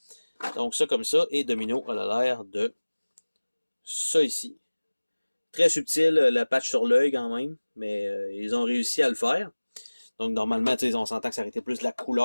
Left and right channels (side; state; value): both; inverted; correlation -1.00